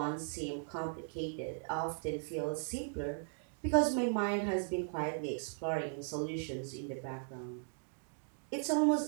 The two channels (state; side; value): silent; left; digital silence